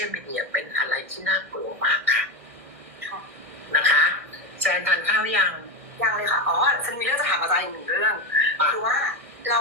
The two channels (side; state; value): left; late; 1.6 ms